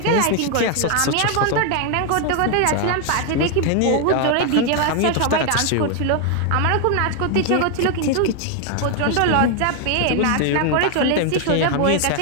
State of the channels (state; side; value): different; both; correlation 0.01